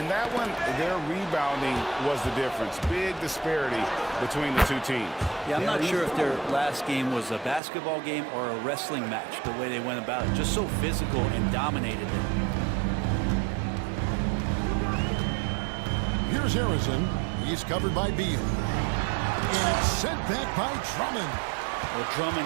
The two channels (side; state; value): left; drops out; at 7.6 s